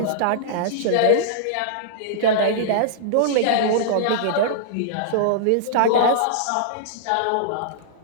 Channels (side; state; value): both; different; correlation -0.02